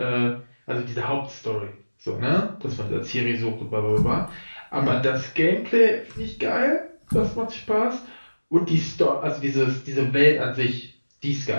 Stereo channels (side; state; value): both; inverted; correlation -1.00